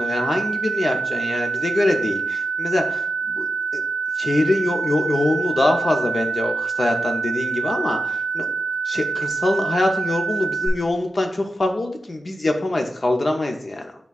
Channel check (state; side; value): normal; both; correlation 0.90